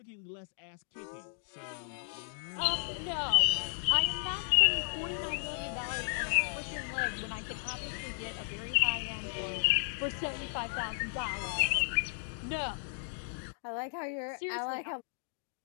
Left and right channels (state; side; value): silent; right; digital silence